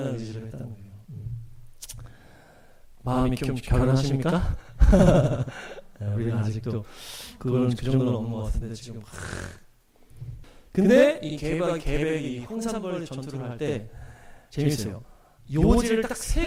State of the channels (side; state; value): both; identical; correlation 1.00